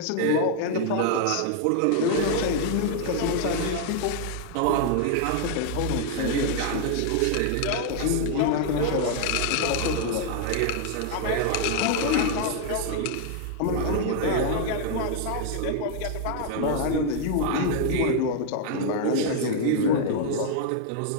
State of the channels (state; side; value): different; both; correlation 0.00